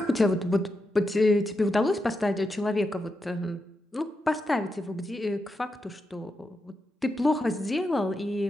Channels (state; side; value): normal; both; correlation 0.86